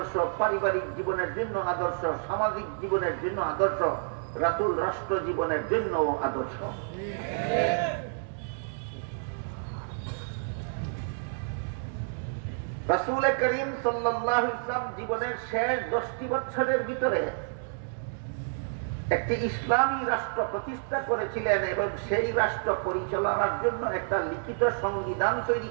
পারিবারিক জীবনের জন্য আদর্শ, সামাজিক জীবনের জন্য আদর্শ, রাসূল রাষ্ট্র জীবনের জন্য আদর্শ। রাসূল করিম সাল্লাল্লাহু আলাইহি ওয়াসাল্লাম জীবনের শেষ 10টি বছরের ভিতরে একটি ইসলামী রাষ্ট্র প্রতিষ্ঠা করেছিলেন এবং সেই রাষ্ট্র পরিচালনার জন্য একটা লিখিত সংবিধান তৈরি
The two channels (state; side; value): silent; left; digital silence